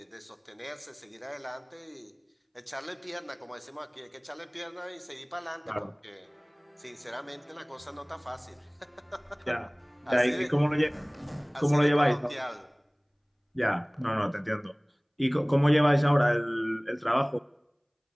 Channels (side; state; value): both; identical; correlation 1.00